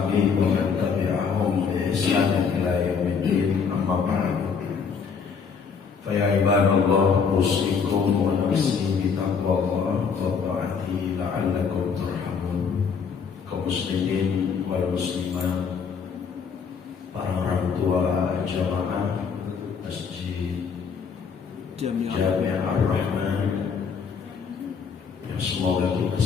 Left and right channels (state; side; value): quieter; right; 6.1 dB